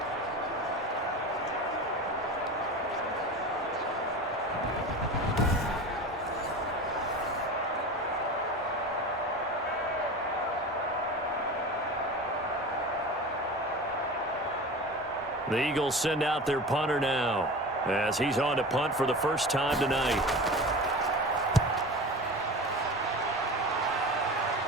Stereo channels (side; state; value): both; normal; correlation 0.32